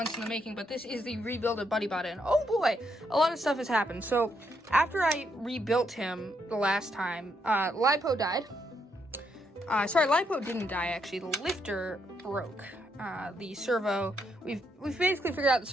in the making, but this is the Rebuild Of Buddybot, and oh boy, a lot of stuff has happened. So after I rebuilt him the last time, Lipo died. Sorry, Lipo didn't die actually. The lifter broke. The servo, we've basically figured out the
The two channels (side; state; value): both; normal; correlation 0.77